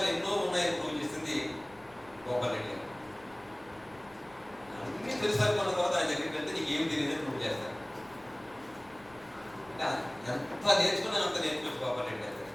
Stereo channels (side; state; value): left; noise; rumble, 26 dB below the sound